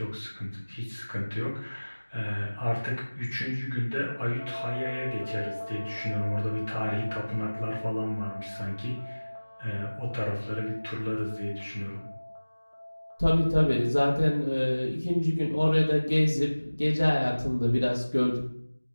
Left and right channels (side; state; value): both; inverted; correlation -1.00